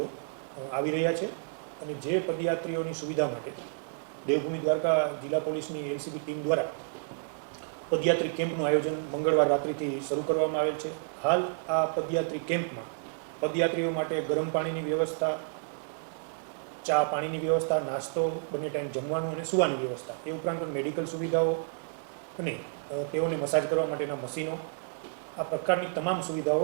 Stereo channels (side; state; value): left; silent; digital silence